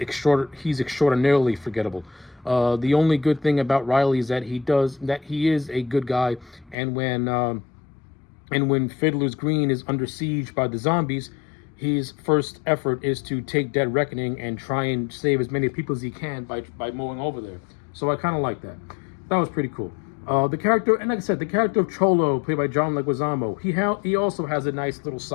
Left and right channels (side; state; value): right; drops out; at 6.8 s